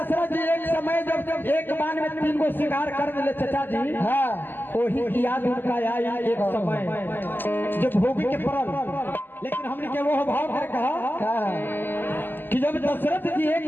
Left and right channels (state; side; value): late; right; 0.092 ms